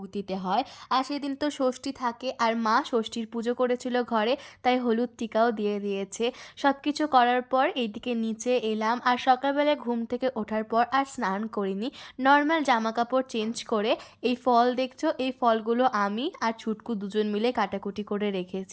দিতে হয়, আর সেদিন তো ষষ্ঠী থাকে, আর মা ষষ্ঠীর পুজো করেছিল ঘরে, তাই হলুদ টিকাও দিয়ে দিয়েছে। সব কিছু করার পর এইদিকে নিচে এলাম, আর সকালবেলায় ঘুম থেকে ওঠার পর আর স্নান করিনি, নর্মাল জামা কাপড় চেঞ্জ করে এই ফল দেখছো, এই ফলগুলো আমি আর ছুটকু 2 জন মিলে কাটাকুটি করে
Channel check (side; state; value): both; identical; correlation 1.00